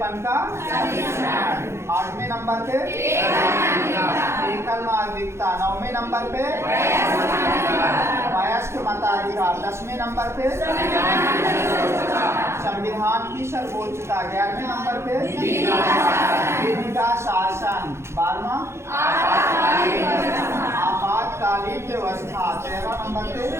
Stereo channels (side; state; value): left; late; 0.13 ms